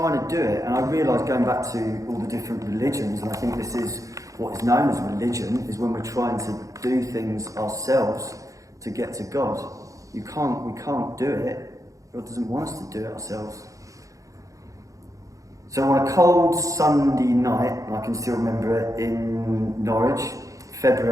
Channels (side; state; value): left; late; 0.16 ms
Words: to do it, and I realised, going back to all the different religions, and I think this is what is known as religion, is when we're trying to do things ourselves to get to God. We can't do it. God doesn't want us to do it ourselves. So on a cold Sunday night, and I can still remember it, in Norwich,